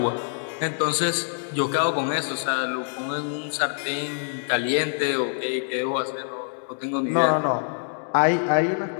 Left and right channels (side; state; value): right; silent; digital silence